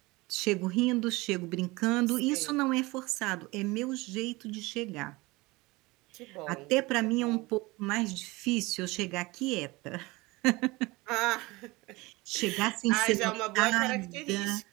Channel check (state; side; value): quieter; left; 22.6 dB